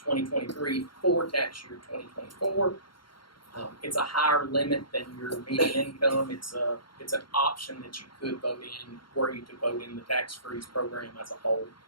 for tax year 2024. It's a higher limit than your median income. It's an option that you could vote in, were you to vote in the tax freeze program as a whole.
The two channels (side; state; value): right; late; 0.73 ms